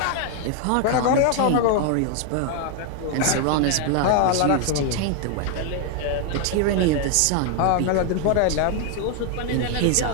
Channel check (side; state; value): both; different; correlation 0.00